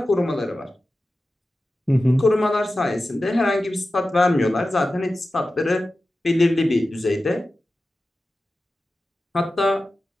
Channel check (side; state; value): both; normal; correlation 0.94